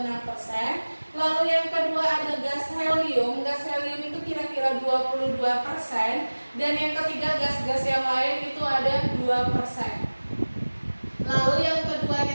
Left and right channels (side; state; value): both; inverted; correlation -1.00